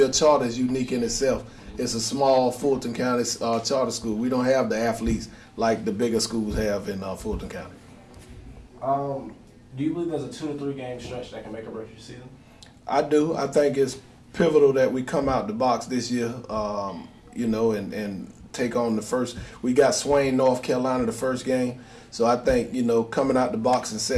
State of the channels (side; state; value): both; identical; correlation 1.00